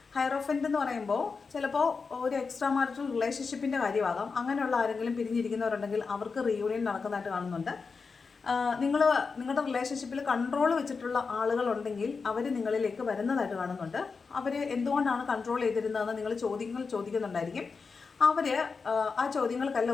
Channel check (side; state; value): right; quieter; 4.9 dB